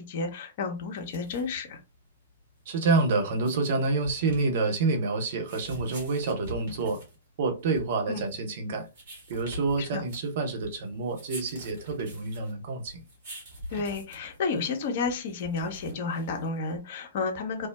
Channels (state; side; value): inverted; both; correlation -0.30